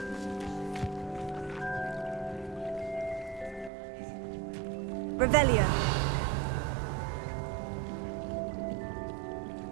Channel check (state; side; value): drops out; left; at 3.7 s